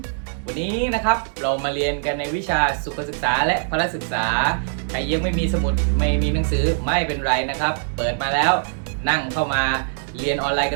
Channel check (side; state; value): left; silent; 64 dB below the other